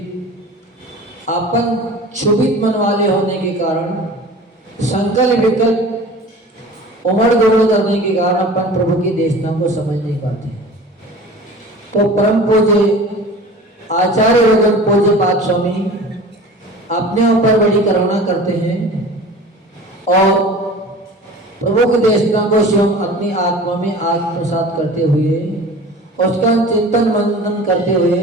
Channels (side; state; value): both; normal; correlation 0.40